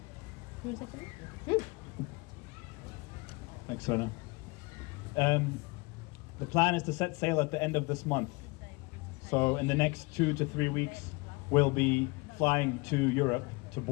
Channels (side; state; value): right; quieter; 26.2 dB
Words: Thanks, Sona. The plan is to set sail at the end of this month. So in the next 2 to 3 weeks, we'll be flying to Europe to